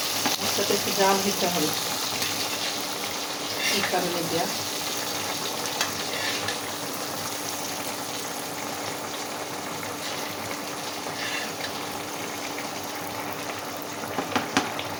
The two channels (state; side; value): identical; both; correlation 1.00